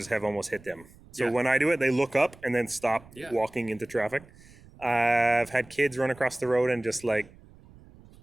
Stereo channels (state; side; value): noise; right; rumble, 23 dB below the sound